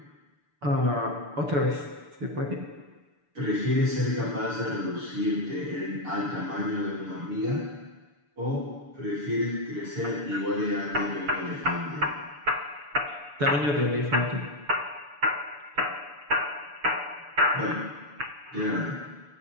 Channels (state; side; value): late; left; 6.9 ms